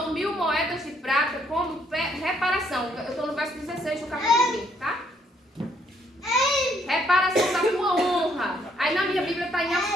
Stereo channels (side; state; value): both; normal; correlation 0.69